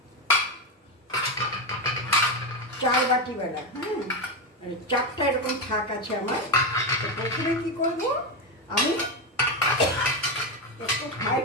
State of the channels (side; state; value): both; normal; correlation 0.11